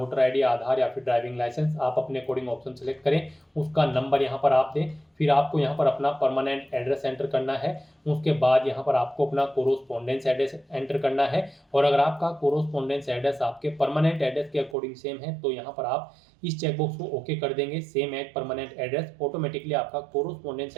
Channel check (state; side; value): drops out; left; at 14.8 s